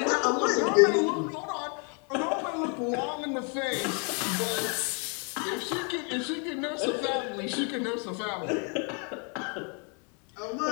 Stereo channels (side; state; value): right; quieter; 37.0 dB